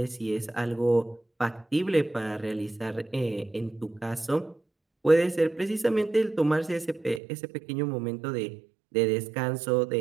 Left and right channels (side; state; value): left; drops out; at 7.2 s